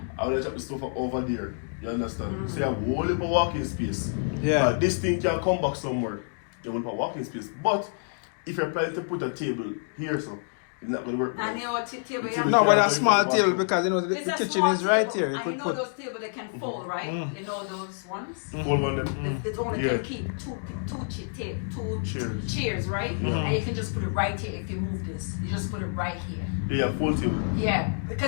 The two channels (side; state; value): right; silent; digital silence